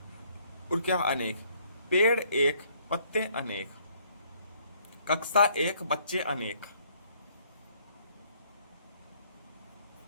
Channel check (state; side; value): inverted; both; correlation -0.65